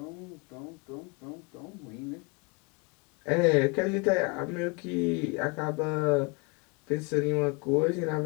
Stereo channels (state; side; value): quieter; right; 29.6 dB